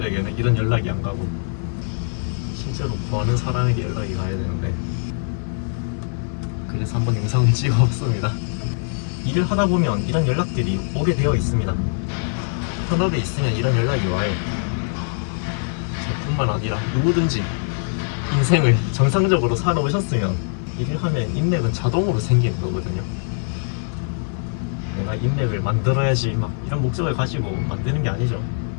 이런 연락이 안 가고 실제로 구하는 사람에게 연락이 가야 되는데, 그래서 한번 영상을 찍어봤습니다. 일을 하다 보면 이런 연락들이 오게 되어 있습니다. 현업에 있으면 이런 연락이 와요. 저뿐만 아니라 누구든지 인생을 정상적으로 살아오셨으면 일을 하면 인맥은 자동으로 생기는 거거든요. 내가 인맥을 만들어야지 막 이런 목적을 가지고 만드는 게 아니죠.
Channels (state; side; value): silent; right; 55 dB below the other